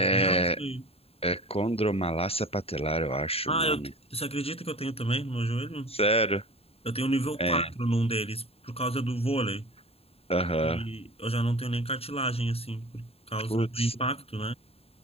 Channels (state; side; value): late; right; 0.29 ms